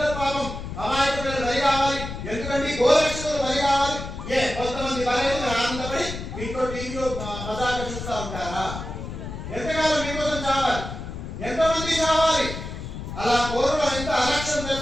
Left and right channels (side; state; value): left; noise; rumble, 8 dB below the sound